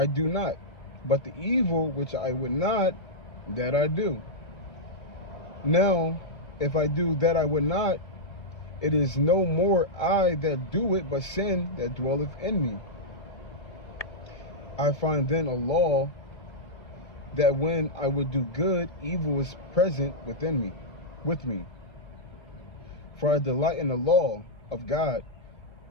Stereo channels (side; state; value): right; late; 1.7 ms